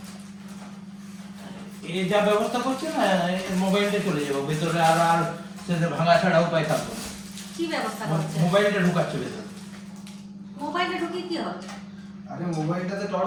এই যা ব্যবস্থা করছে না, মোবাইলটা চলে যাবো ভেতরে, আর আর সেটা ভাঙা ছাড়া উপায় থাকবে না। কি ব্যবস্থা করছে? মোবাইলটা ঢুকাচ্ছে ভেতরে। মোবাইলটা ঢুকিয়ে কি হবে? আরে মোবাইলটাতে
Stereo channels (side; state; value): both; identical; correlation 1.00